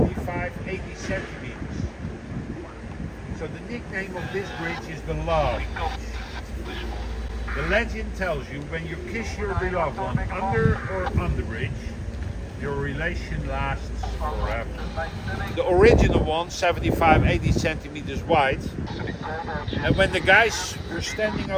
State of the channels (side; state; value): both; identical; correlation 1.00